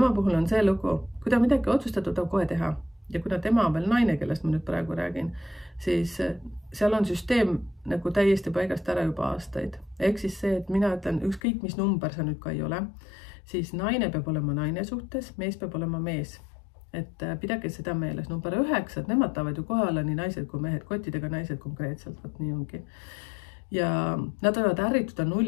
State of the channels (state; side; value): drops out; right; at 11.4 s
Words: puhul on see lugu, kui ta midagi otsustatud on kohe teha. Ja kuna tema on veel naine, kellest ma nüüd praegu räägin, siis seal on süsteem nagu täiesti paigast ära juba aastaid. Ehk siis see, et mina ütlen, ükskõik mis number sa nüüd ka ei ole, siis naine peab olema naine suhtes, mees peab olema mees. Et pidage seda meeles. Number 9, et nemad tahavad ju kohe olla nii naised kui mehed, kottidega naised konkreetselt, võt nii ongi. Ja nad võivad ärrituda